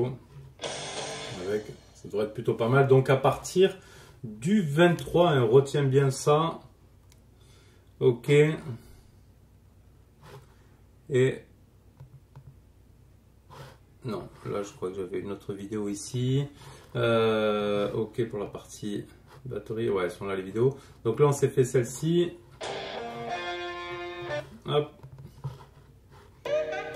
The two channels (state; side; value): identical; both; correlation 1.00